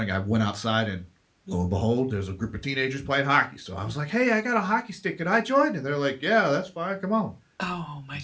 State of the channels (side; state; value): both; identical; correlation 1.00